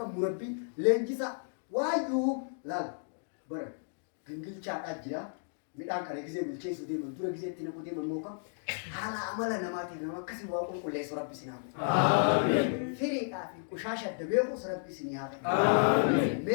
مربي لنجيسا وايو لا بر جنجل شاك أجرا ميدان كاره كذا بيلشي سودي من دورة كذا تينا كودي من موكا حالا عملا نماتي نما كسي واقول كل سراب بسناه آمين فريق أفي كشاشة دبيعو سراب بسنيه آمين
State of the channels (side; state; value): right; silent; digital silence